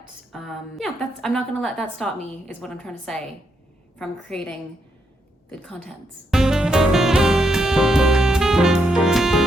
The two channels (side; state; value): both; normal; correlation 0.78